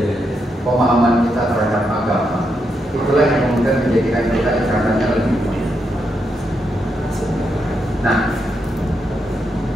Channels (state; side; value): normal; both; correlation 0.82